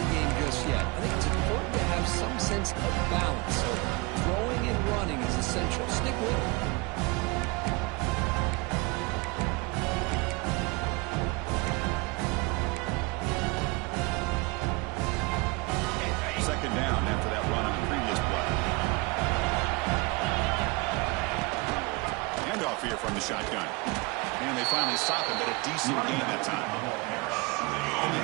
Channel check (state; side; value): quieter; left; 26.0 dB